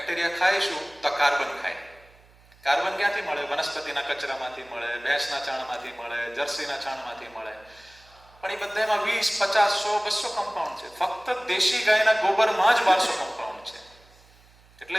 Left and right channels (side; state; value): right; noise; hum, 28 dB below the sound